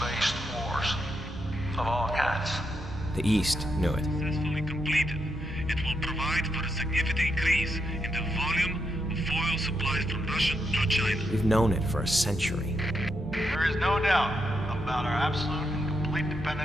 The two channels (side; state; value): right; noise; hum, 14 dB below the sound